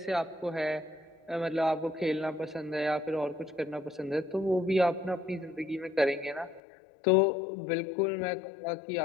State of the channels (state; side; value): drops out; right; at 6.6 s